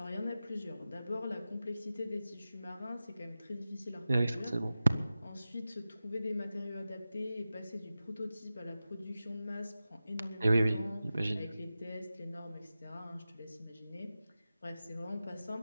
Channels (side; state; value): both; inverted; correlation -0.94